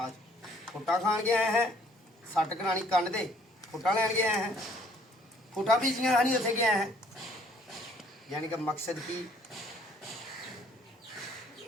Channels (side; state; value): both; normal; correlation 0.61